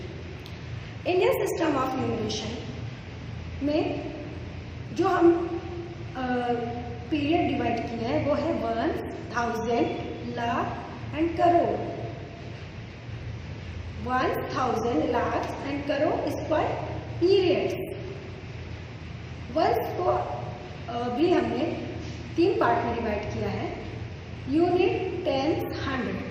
Indian system of numeration में जो हम पीरियड डिवाइड किया है वो है 1000, lakh and crore. 1000, lakh and crore is called periods. Words को भी हमने 3 पार्ट में डिवाइड किया है, यूनिट, टेंस,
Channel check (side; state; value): both; identical; correlation 1.00